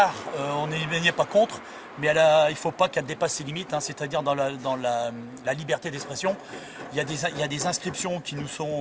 on n'y est pas contre, mais il ne faut pas qu'elle dépasse ses limites, hein, c'est-à-dire dans la liberté d'expression. Il y a des inscriptions qui nous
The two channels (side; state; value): both; identical; correlation 1.00